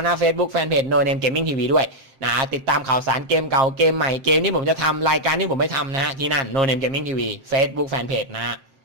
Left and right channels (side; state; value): left; late; 7.4 ms